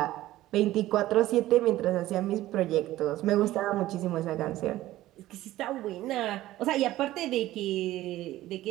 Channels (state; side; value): quieter; left; 15.5 dB